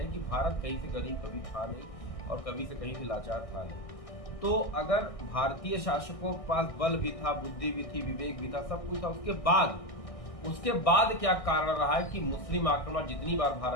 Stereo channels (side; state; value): right; late; 1.6 ms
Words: है कि भारत कहीं से गरीब कभी था नहीं और कभी से कहीं से लाचार था नहीं। तो अगर भारतीय शासकों के पास बल भी था, बुद्धि भी थी, विवेक भी था, सब कुछ था, उसके बाद क्या कारण रहा है कि मुस्लिम आक्रमण जितनी बार